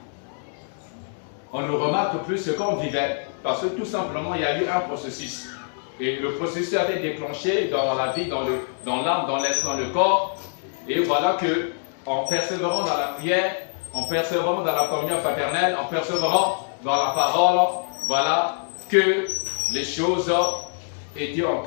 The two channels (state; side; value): silent; right; digital silence